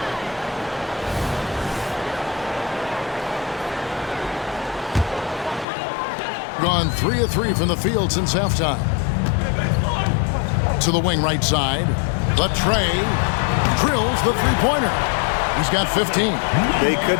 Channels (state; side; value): drops out; right; at 5.7 s